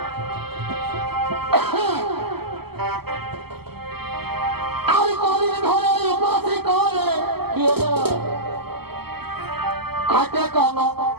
আমি কদিন ধরে উপাসী করে কি হলো খাইতে কোন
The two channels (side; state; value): left; late; 0.96 ms